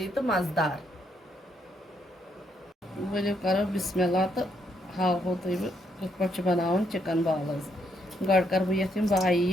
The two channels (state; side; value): normal; both; correlation 0.75